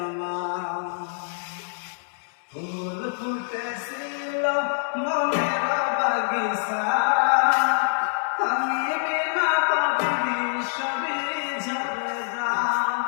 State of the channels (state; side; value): silent; right; 61 dB below the other